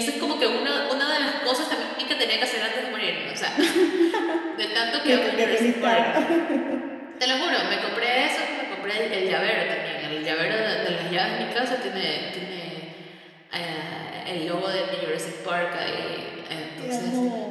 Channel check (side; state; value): both; identical; correlation 1.00